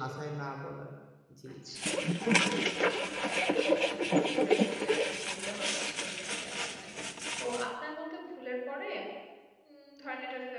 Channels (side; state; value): both; identical; correlation 1.00